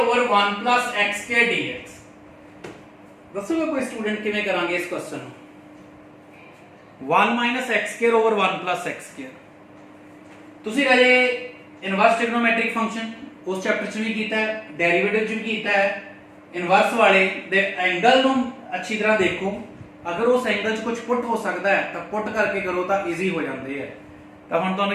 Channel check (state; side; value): identical; both; correlation 1.00